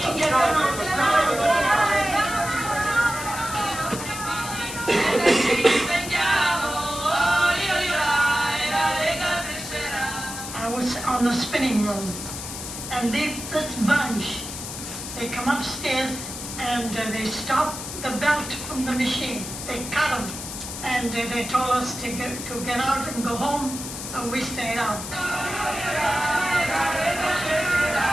I was on the spinning room, and this bunch, they come upstairs and they stop the belt from the machine. They cut them, and they told us to get out and go home, so we stayed out.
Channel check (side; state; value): left; noise; hiss, 8 dB below the sound